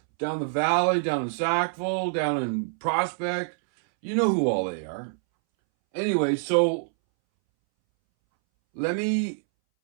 down the valley, down in Sackville, down in Prospect. You know who all they are. Anyway, so there's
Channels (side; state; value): left; silent; 61 dB below the other